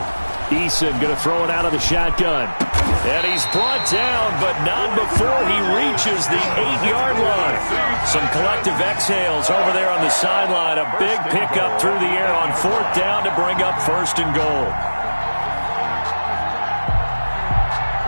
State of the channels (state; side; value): inverted; both; correlation -1.00